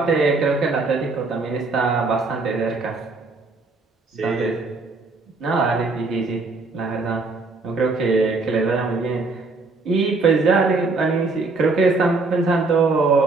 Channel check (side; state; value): left; quieter; 3.7 dB